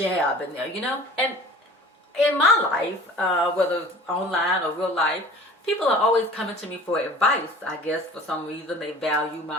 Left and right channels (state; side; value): normal; both; correlation 0.44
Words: in there, you know? And in my life, whether online or real life, people are always coming to me for advice. I guess for some reason they value